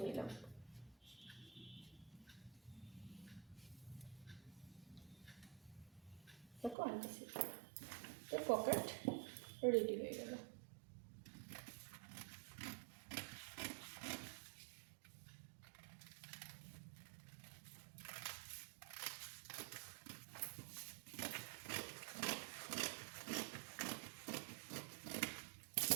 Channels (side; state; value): left; drops out; at 6.8 s